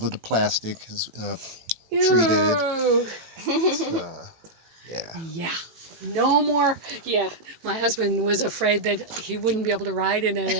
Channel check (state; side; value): late; left; 18 ms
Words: of the plastic is treated. Yeah. Yeah. No more. Yeah. My husband was afraid that he wouldn't be able to ride in it